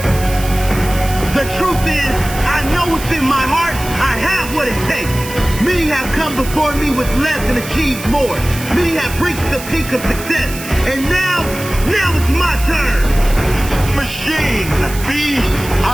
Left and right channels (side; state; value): right; noise; hiss, 12 dB below the sound